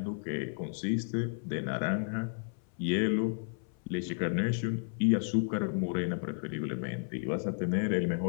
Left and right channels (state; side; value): silent; right; 56 dB below the other